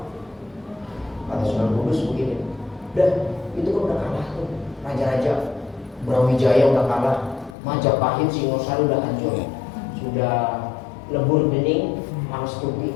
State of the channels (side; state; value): right; drops out; at 7.6 s